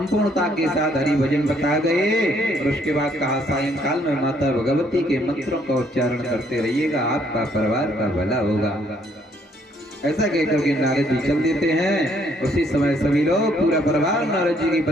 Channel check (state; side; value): normal; both; correlation 0.67